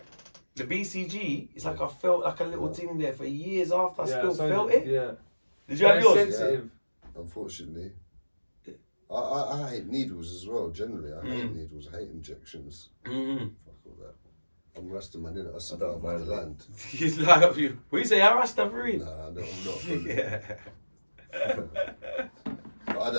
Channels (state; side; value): inverted; both; correlation -1.00